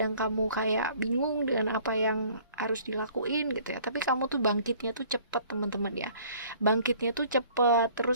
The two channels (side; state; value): both; inverted; correlation -0.54